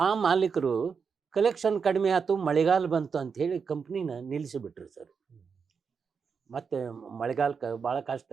ಆ ಮಾಲೀಕರು ಕಲೆಕ್ಷನ್ ಕಡಿಮೆ ಆಯ್ತು, ಮಳೆಗಾಲ ಬಂತು ಅಂಥೇಳಿ ಕಂಪ್ನಿನ ನಿಲ್ಲಿಸಿಬಿಟ್ರು ಸರ್. ಮತ್ತು ಮಳೆಗಾಲಕ್ಕೆ ಭಾಳ ಕಷ್ಟ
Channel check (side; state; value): left; quieter; 5.9 dB